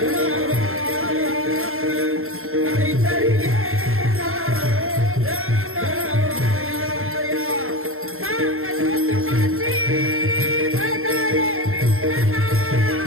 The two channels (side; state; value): left; late; 0.62 ms